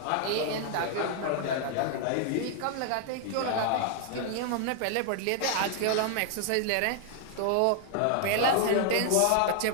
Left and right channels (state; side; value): different; both; correlation 0.00